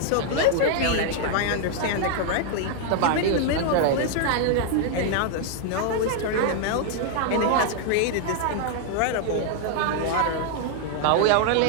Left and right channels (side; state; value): both; different; correlation 0.00